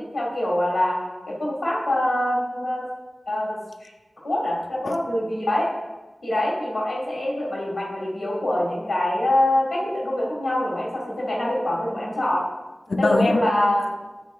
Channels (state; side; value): normal; both; correlation 0.96